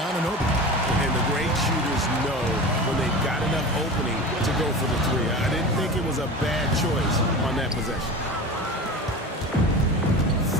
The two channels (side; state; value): both; normal; correlation 0.31